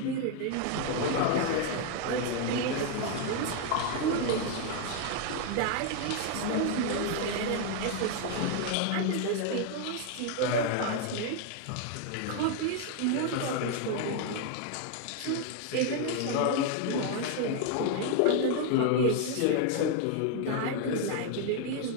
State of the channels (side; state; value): both; different; correlation 0.01